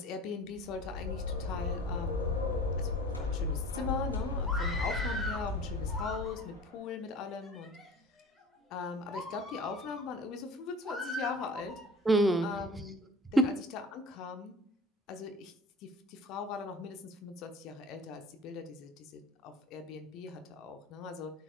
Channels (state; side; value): normal; both; correlation 0.41